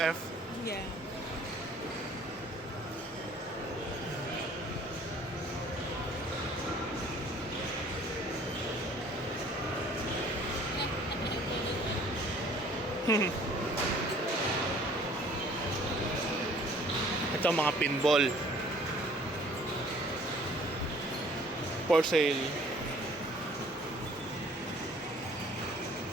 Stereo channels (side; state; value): both; normal; correlation 0.54